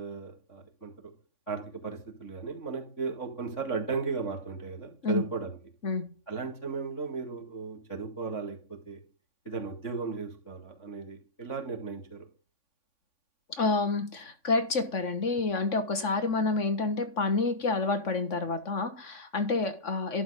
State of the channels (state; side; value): late; right; 3.5 ms